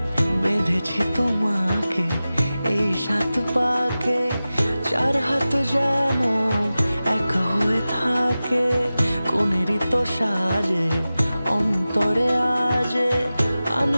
বেঁধেছি তোমাকে এই 7 পাকে, 4 হাত যেন এক হয়ে থাকে। কোনেরই তো সাজে অন্তরে আজে,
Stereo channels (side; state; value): both; inverted; correlation -0.95